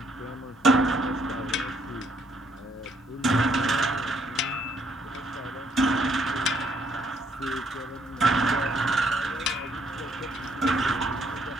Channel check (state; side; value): normal; both; correlation 0.69